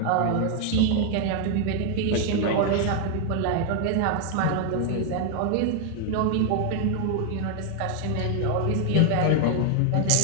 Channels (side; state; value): both; different; correlation 0.00